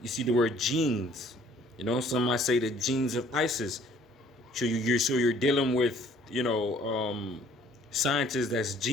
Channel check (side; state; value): both; normal; correlation 0.58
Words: You see the word genes. You know, some might say the genes of Isis. So you're dealing with scientists that's